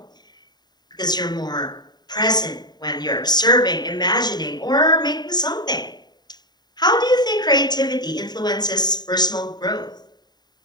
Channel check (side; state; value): right; late; 0.20 ms